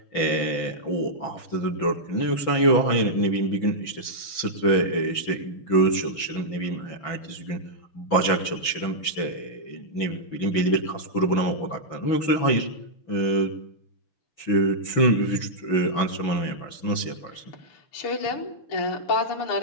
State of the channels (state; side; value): late; right; 6.0 ms